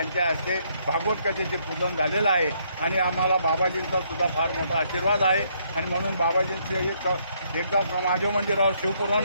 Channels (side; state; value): both; inverted; correlation -0.70